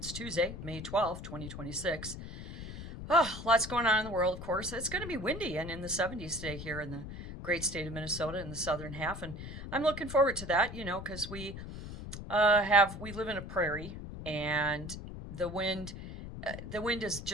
Tuesday, May 12th, 2026. Oh, lots going on in the world, of course. It's going to be windy and in the 70s today here in the great state of Minnesota in the southern half. And I'm looking forward to that, because we live in a prairie and the wind, the wind is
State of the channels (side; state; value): left; noise; rumble, 10 dB below the sound